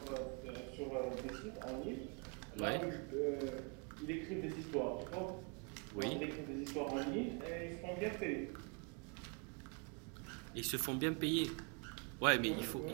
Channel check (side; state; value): left; quieter; 34.9 dB